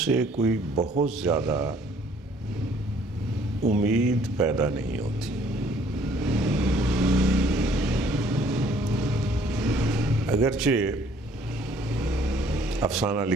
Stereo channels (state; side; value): normal; both; correlation 0.60